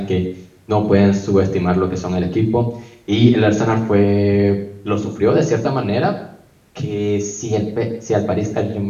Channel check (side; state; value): both; identical; correlation 1.00